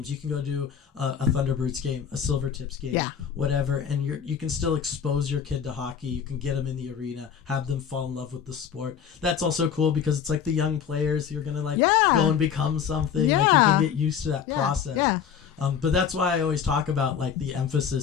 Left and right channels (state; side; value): quieter; right; 7.8 dB